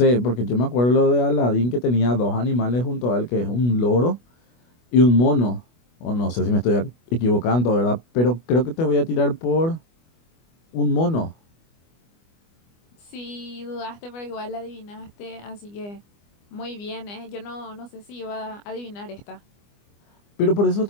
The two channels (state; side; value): late; right; 25 ms